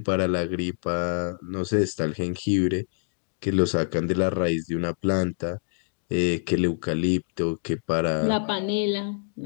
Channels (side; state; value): right; silent; digital silence